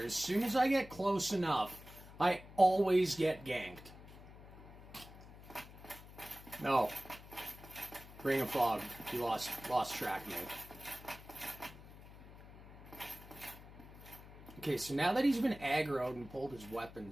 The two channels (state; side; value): noise; left; hum, 17 dB below the sound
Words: As soon as I get close enough, I always get ganked. No. Ring of Fog. He lost track of me. Okay, so now that he's been aggroed and pulled his